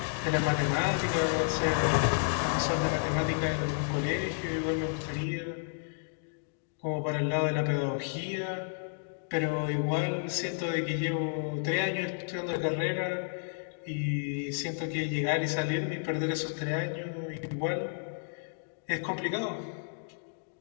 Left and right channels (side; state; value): right; silent; digital silence